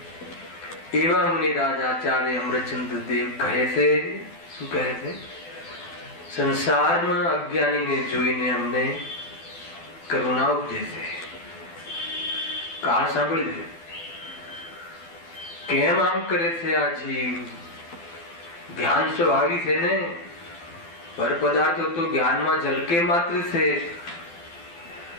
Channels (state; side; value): late; right; 12 ms